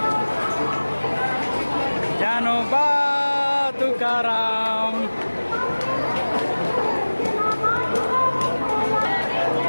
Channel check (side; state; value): both; inverted; correlation -1.00